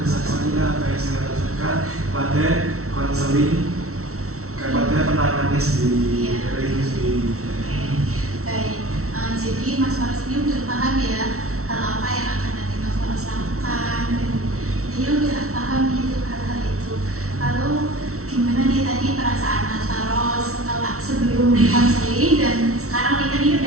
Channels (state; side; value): late; left; 0.63 ms